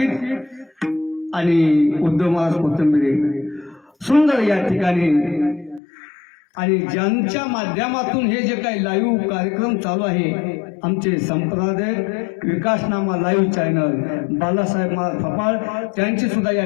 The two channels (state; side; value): drops out; right; at 5.8 s